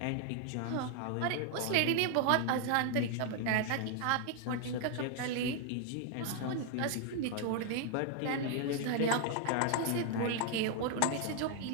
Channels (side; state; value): both; different; correlation 0.00